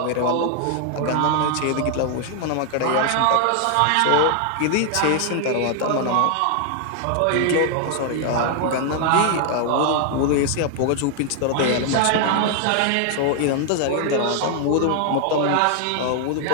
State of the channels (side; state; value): both; different; correlation 0.00